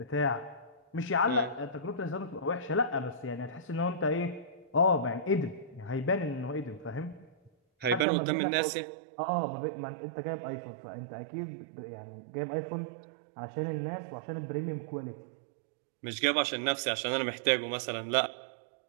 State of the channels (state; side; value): drops out; left; at 8.1 s